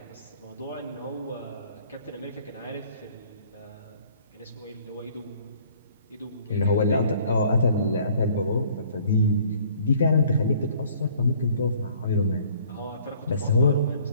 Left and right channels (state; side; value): inverted; both; correlation -0.56